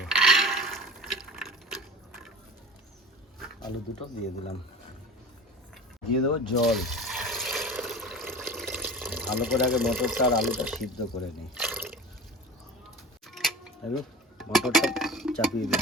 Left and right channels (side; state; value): both; normal; correlation 0.36